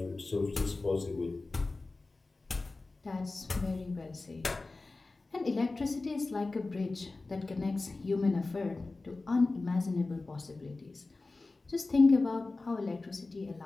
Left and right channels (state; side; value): quieter; right; 3.4 dB